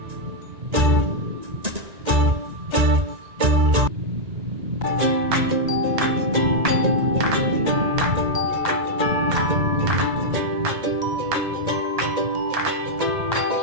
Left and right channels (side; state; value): left; late; 1.9 ms